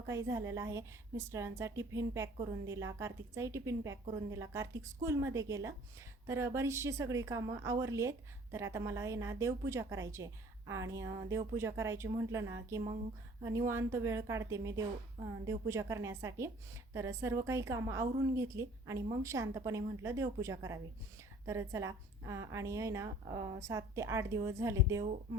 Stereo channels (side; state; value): both; normal; correlation 0.51